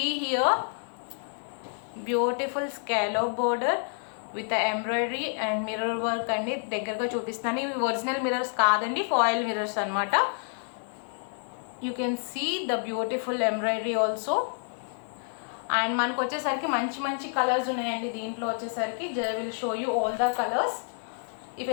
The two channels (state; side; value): silent; right; 59 dB below the other